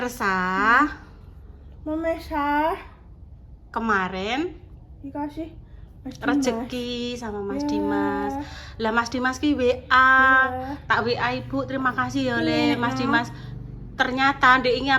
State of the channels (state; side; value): identical; both; correlation 1.00